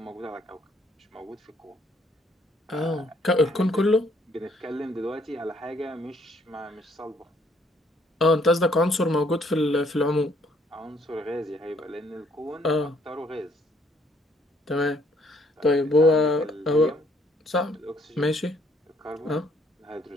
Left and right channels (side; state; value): both; normal; correlation 0.66